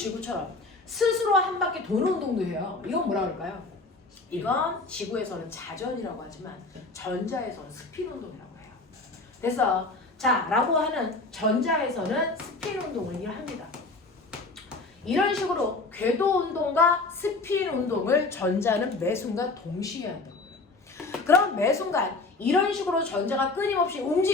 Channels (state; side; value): quieter; right; 3.4 dB